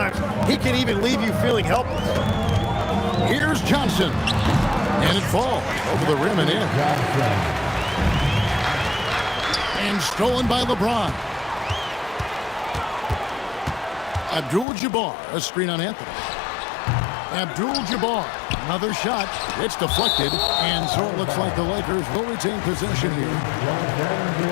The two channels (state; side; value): drops out; right; at 14.7 s